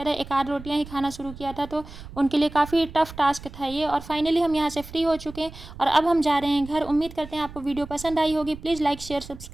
था, एक आध रोटियाँ ही खाना शुरू किया था, तो उनके लिए काफ़ी टफ टास्क था ये। और फाइनली हम यहाँ से फ्री हो चुके हैं और अब हम जा रहे हैं घर। उम्मीद करते हैं आपको वीडियो पसंद आई होगी। प्लीज़ लाइक शेयर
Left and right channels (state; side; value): noise; right; rumble, 15 dB below the sound